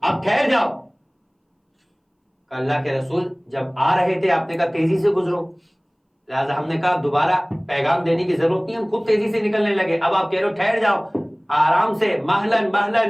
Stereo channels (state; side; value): identical; both; correlation 1.00